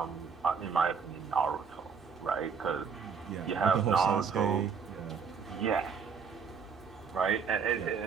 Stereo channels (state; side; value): quieter; left; 6.1 dB